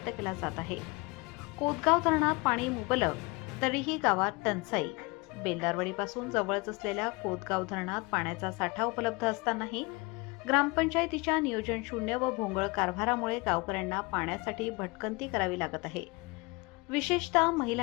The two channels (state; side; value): quieter; right; 26.8 dB